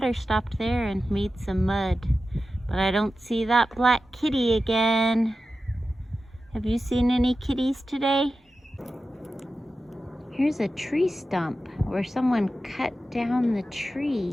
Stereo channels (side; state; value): both; normal; correlation 0.93